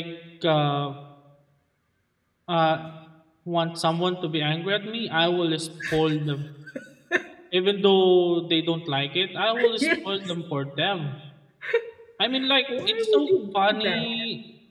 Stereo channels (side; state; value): both; identical; correlation 1.00